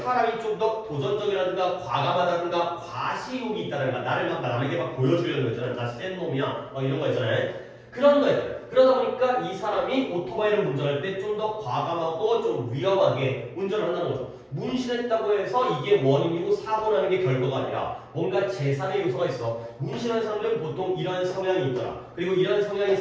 사람이 좀 더 도전적이라든가 과감하다든가 과시욕이 있다든가 나를 막 남에게 막 보여주려는 거 있잖아요. 나 센 놈이야. 막 이런 거 있잖아요. 그런 거예요. 그러다 보니까 이 사람이 오토바이를 운전할 때 좀 더 과감하고 좀 위험하게 운전을 한다는 거죠. 문신했다고 해서 이게 원인이고 사고 나는 게 결과가 아니라 뭔가 제3의 요소가 있어. 문신한 사람들은 보통 이러한 성향이 있더라. 그리고 이러한 성향의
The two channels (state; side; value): identical; both; correlation 1.00